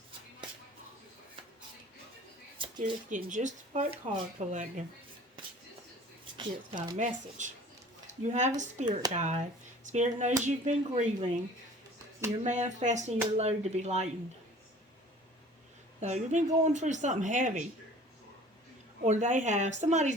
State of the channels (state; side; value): normal; both; correlation 0.48